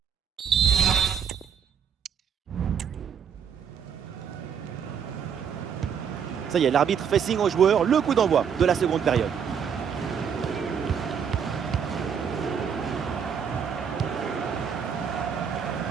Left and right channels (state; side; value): quieter; left; 7.4 dB